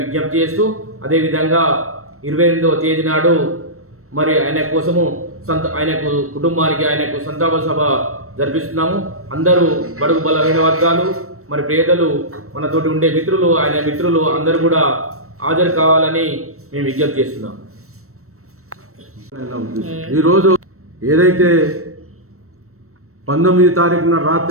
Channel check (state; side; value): late; left; 0.63 ms